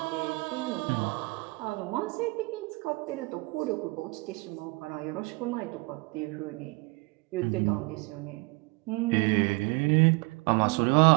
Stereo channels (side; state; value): left; quieter; 26.6 dB